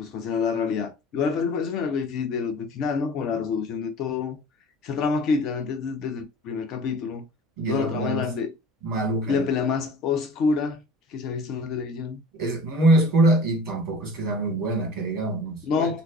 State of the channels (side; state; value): both; normal; correlation 0.42